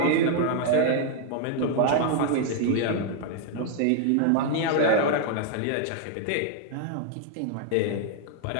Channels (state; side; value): different; both; correlation 0.00